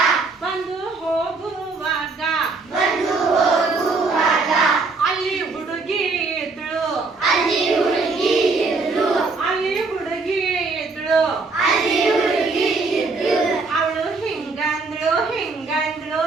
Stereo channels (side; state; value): left; quieter; 4.0 dB